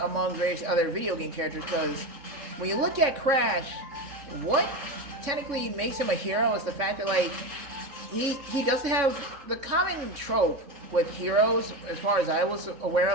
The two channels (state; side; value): late; left; 3.6 ms